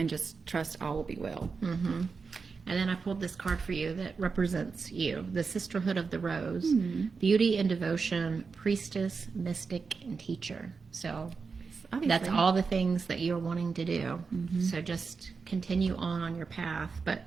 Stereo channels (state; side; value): quieter; left; 4.9 dB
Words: just trust all will be well. Mm-hmm. And then I pulled this card for you that represents you, the Sisterhood of the Rose, beauty and devotion, priestess, mystic, and teacher. So obviously, that's all the things that you're wanting to do. Mm-hmm. So just continue on your path. But